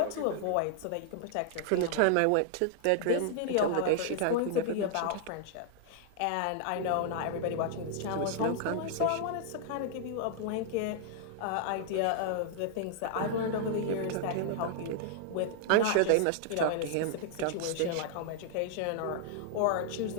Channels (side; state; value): both; different; correlation -0.01